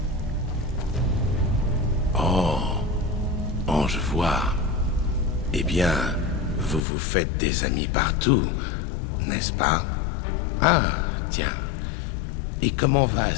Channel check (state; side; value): drops out; right; at 6.8 s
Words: Oh, je vois. Eh bien, vous vous faites des amis partout, n'est-ce pas? Ah, tiens. Et comment va